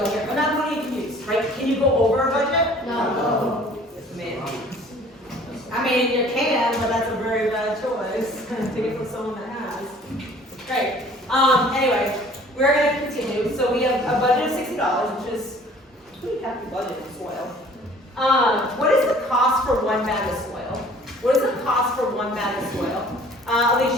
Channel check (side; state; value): both; normal; correlation 0.52